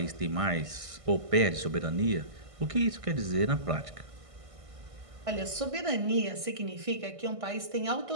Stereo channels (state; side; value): late; left; 1.5 ms